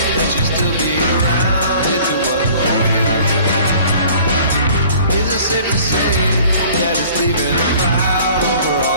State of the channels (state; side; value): inverted; both; correlation -0.50